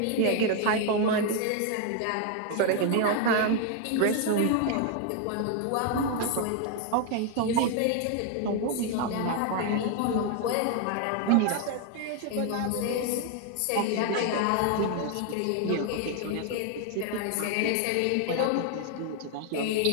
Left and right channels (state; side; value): different; both; correlation 0.00